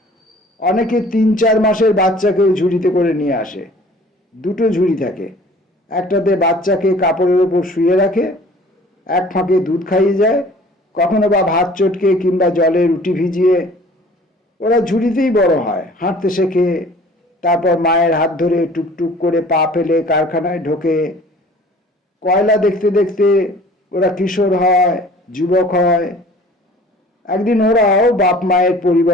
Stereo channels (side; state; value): both; normal; correlation 0.49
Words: অনেকে 3-4 মাসের বাচ্চাকেও ঝুড়িতে করে নিয়ে আসে। 2টো ঝুড়ি থাকে, একটাতে বাচ্চাকে কাপড়ের ওপর শুয়ে রাখে, এক ফাঁকে দুধ খাইয়ে যায়, কখনো বা ভাত চটকে কিংবা জলে রুটি ভিজিয়ে। ওরা ঝুড়িতেই বড় হয়, হাঁটতে শেখে, তারপর মায়ের হাত ধরে টুকটুক করে পা ফেলে কারখানায় ঢোকে। কয়লা দেখতে দেখতে ওরা কিশোর হয়, যুবক হয়। একদিন ওরাও বাপ মায়ের